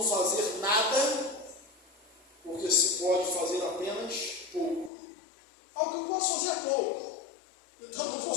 fazer nada, porque se pode fazer apenas pouco. Algo que eu posso fazer é pouco, então não vou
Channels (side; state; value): right; drops out; at 4.9 s